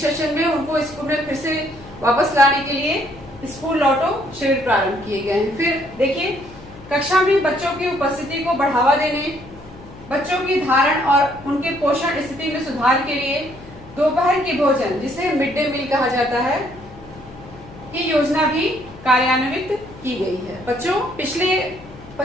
सेशन में, उनको स्कूल में फिर से वापस लाने के लिए स्कूल लौटो शिविर प्रारंभ किए गए हैं। फिर देखिए, कक्षा में बच्चों की उपस्थिति को बढ़ावा देने, बच्चों की धारण और उनके पोषण स्थिति में सुधार के लिए दोपहर के भोजन, जिसे मिड डे मील कहा जाता है, की योजना भी कार्यान्वित की गई है। बच्चों, पिछले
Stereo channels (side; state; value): left; noise; hum, 19 dB below the sound